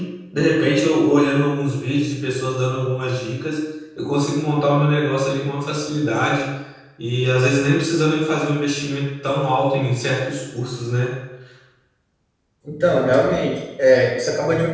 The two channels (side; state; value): both; identical; correlation 1.00